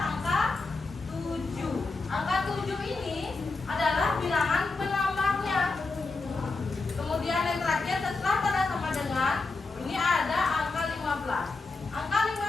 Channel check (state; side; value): quieter; right; 3.7 dB